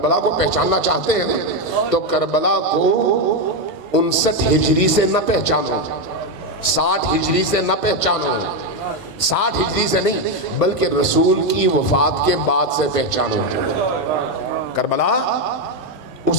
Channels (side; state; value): left; late; 20 ms